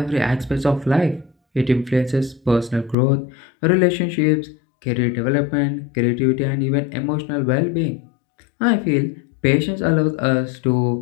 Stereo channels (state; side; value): drops out; right; at 3.0 s